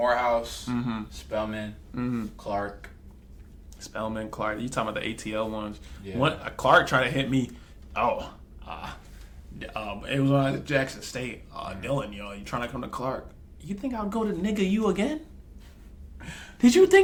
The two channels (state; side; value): identical; both; correlation 1.00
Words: Mm-hmm. Spelman, Mm-hmm. Clark. Spellman, Clark. You talking about the ATL ones? Yeah. One Clark tried to hit me. It was on Jackson State. Dylan, yo, you trying to come to Clark? You think I'll go to nigga you again? Did you